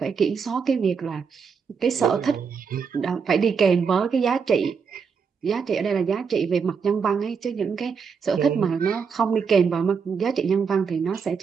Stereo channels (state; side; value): quieter; left; 6.0 dB